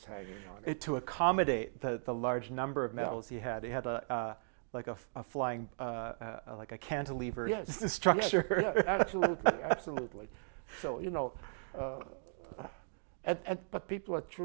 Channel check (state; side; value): silent; left; digital silence